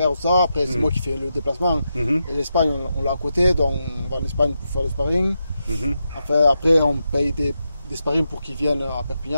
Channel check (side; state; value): both; inverted; correlation -0.86